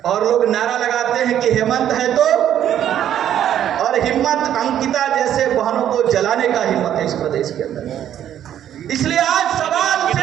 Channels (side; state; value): left; quieter; 10.6 dB